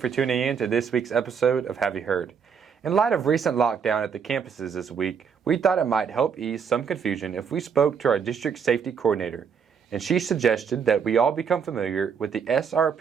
tuning in to this week's episode of Have You Heard? In light of recent lockdown at the campuses this week, we thought it might help ease some confusion if we spoke to our district safety coordinator, and she suggested that we all become familiar with the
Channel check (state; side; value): quieter; left; 6.7 dB